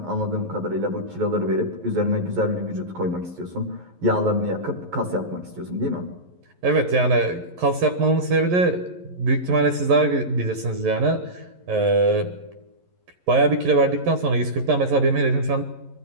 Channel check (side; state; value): left; late; 11 ms